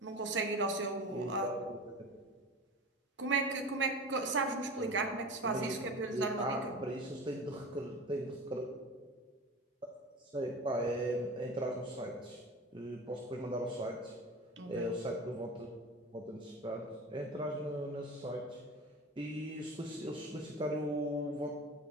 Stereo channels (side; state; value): both; normal; correlation 0.33